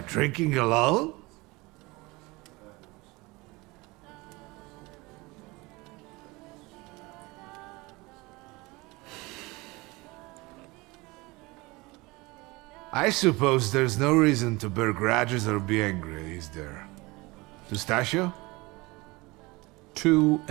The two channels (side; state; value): left; quieter; 23.4 dB